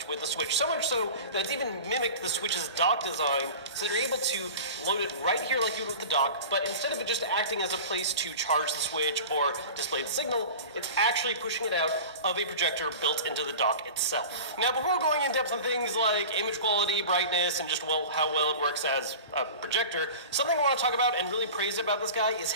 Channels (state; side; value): inverted; both; correlation -0.35